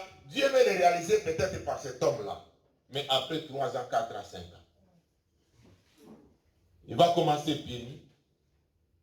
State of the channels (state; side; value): identical; both; correlation 1.00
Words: Dieu veut le réaliser peut-être par cet homme-là. Mais après 3 ans, 4 ans, 5 ans. Il va commencer pieds nus.